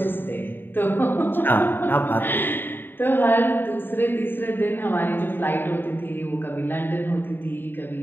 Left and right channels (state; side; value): late; right; 0.096 ms